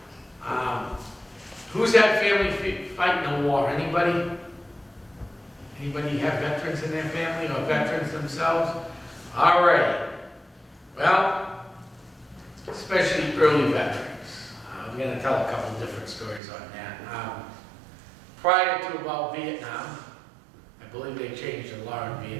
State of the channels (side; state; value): left; drops out; at 16.4 s